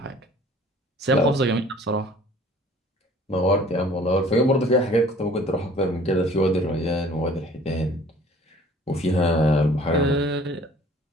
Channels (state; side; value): normal; both; correlation 0.52